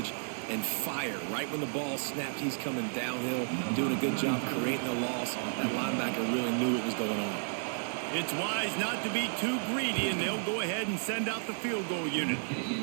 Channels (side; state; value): left; silent; 56 dB below the other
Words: and fire. Right when the ball snapped, he's coming downhill, doing a good job creating the loss. That linebacker really knew what was going on. It's wise not to be too greedy, and they'll go ahead and send out the field goal unit.